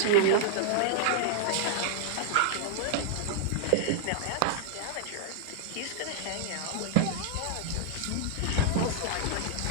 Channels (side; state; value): both; different; correlation -0.01